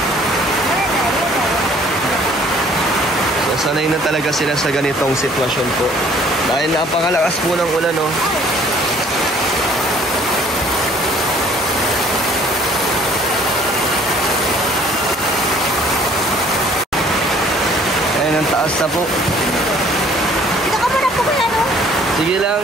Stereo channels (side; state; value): both; normal; correlation 0.56